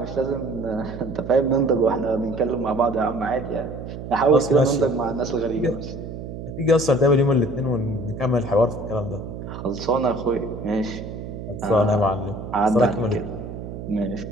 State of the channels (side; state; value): right; noise; hum, 9 dB below the sound